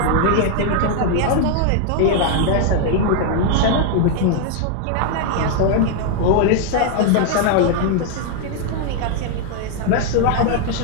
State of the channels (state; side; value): different; both; correlation 0.00